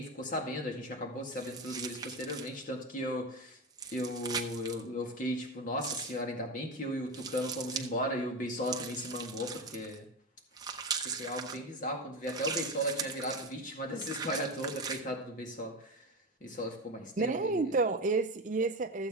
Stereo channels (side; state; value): both; normal; correlation 0.20